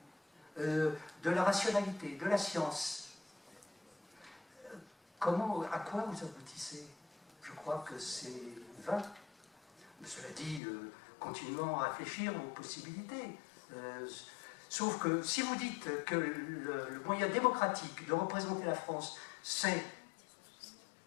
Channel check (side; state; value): right; drops out; at 10.6 s